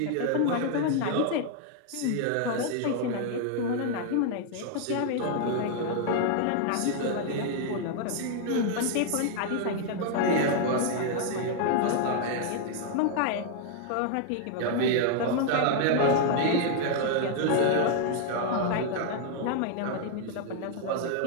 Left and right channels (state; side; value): different; both; correlation 0.00